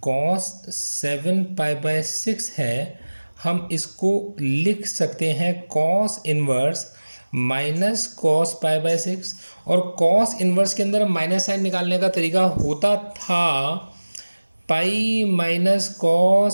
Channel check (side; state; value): both; inverted; correlation -1.00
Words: cos seven pi by six है, हम इसको लिख सकते हैं cos inverse minus cos pi by six, और कॉस इनवर्स के अंदर माइनस साइन निकालने का तरीका होता था pi minus